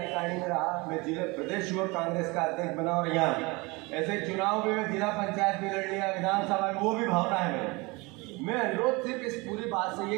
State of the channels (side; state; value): left; quieter; 25.3 dB